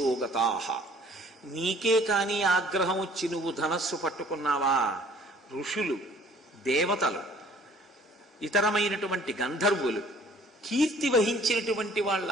నీకే కాని ఆగ్రహం వచ్చి నువ్వు ధనస్సు పట్టుకున్నావా, ఋషులు, దేవతలు, ఇతరమైనటువంటి గంధర్వులు, కీర్తి వహించినటువంటి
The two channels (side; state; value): both; normal; correlation 0.54